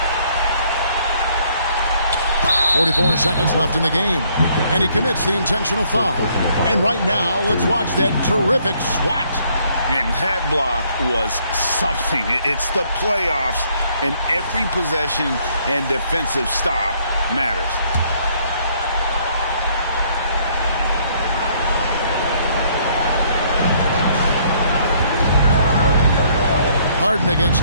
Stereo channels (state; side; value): inverted; both; correlation -0.66